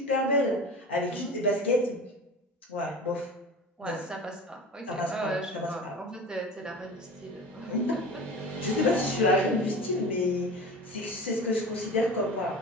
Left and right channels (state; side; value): normal; both; correlation 0.34